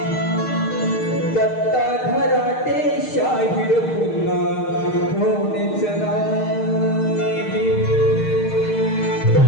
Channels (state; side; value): late; right; 6.5 ms